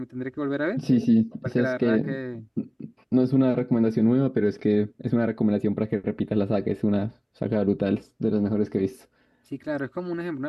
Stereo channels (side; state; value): both; identical; correlation 1.00